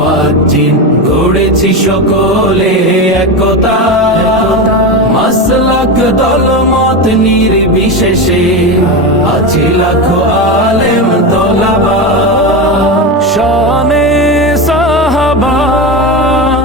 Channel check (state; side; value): normal; both; correlation 0.18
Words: গড়েছি সকলে একতা, মাসলাক দলমত নির্বিশেষে আছি লাখো আলেম তোলাবা। শানে সাহাবা,